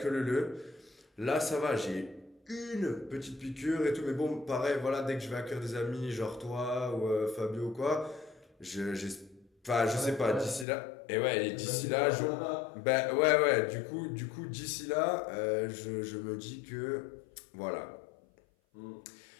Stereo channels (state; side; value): drops out; right; at 10.7 s